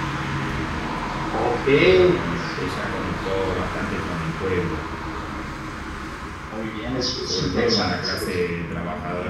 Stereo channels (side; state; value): both; identical; correlation 1.00